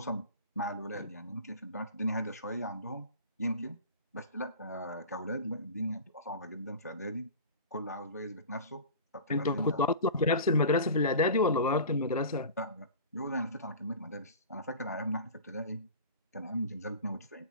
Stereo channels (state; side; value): inverted; both; correlation -0.35